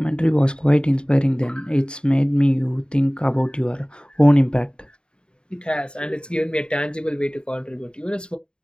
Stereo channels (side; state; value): right; late; 0.050 ms